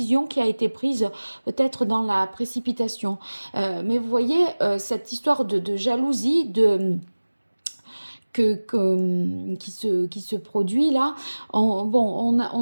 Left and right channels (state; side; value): inverted; both; correlation -1.00